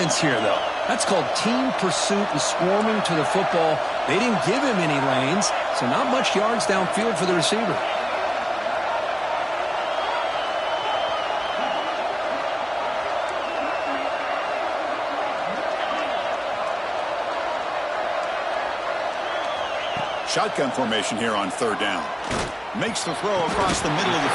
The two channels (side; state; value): both; identical; correlation 1.00